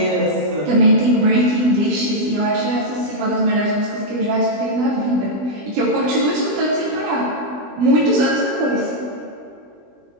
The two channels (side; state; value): left; late; 20 ms